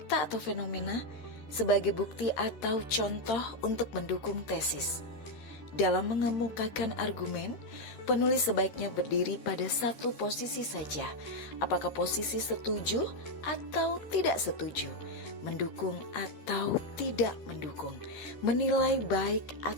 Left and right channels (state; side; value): late; right; 13 ms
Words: atau fenomena sebagai bukti atau contoh untuk mendukung tesis. Dalam mengemukakan argumen, penulis sebaiknya berdiri pada satu posisi saja, apakah posisi setuju atau tidak setuju, mendukung atau tidak mendukung, menilai baik